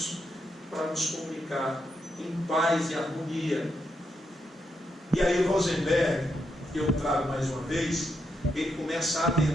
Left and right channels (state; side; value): normal; both; correlation 0.82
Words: para nos comunicar em paz e harmonia. E aí Rosenberg, que eu trago mais uma vez, ele começa a